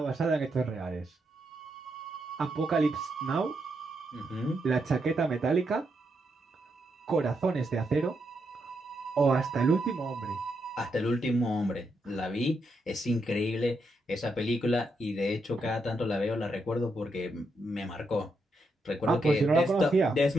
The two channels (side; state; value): both; normal; correlation 0.81